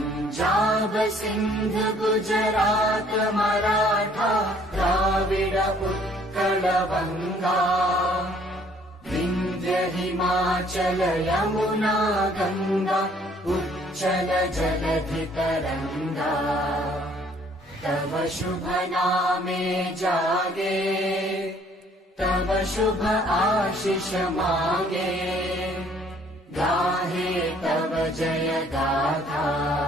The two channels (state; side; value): normal; both; correlation 0.60